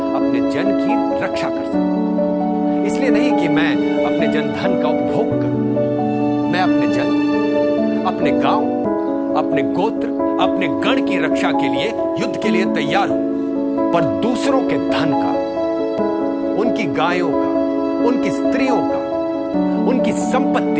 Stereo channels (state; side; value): identical; both; correlation 1.00